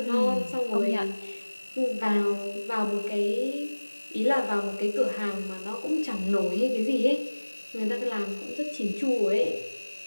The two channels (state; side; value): inverted; both; correlation -1.00